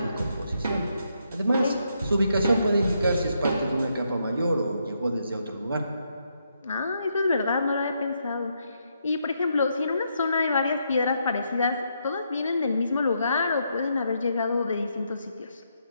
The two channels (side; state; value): both; inverted; correlation -0.78